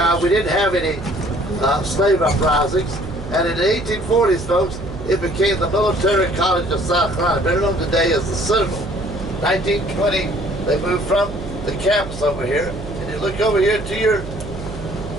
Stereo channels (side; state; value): right; noise; hum, 10 dB below the sound